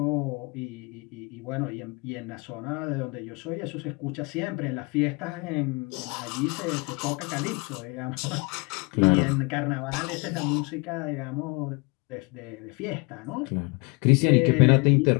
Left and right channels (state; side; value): quieter; right; 29.0 dB